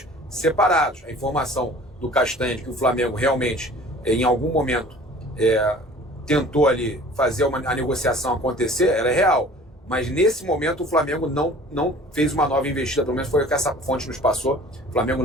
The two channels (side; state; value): both; normal; correlation 0.47